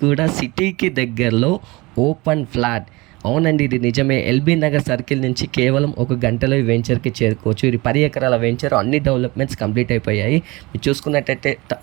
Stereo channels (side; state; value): left; quieter; 23.0 dB